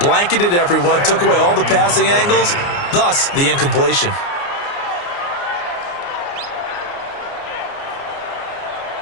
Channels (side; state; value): right; late; 29 ms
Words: blanketed everyone, took away all the passing angles, thus the incompletion.